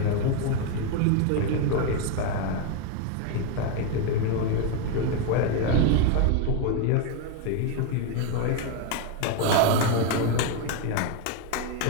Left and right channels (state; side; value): different; both; correlation 0.01